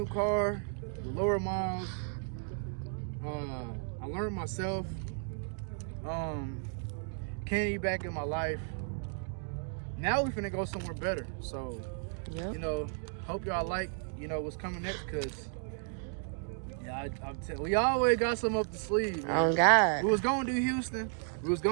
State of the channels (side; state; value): left; silent; 55 dB below the other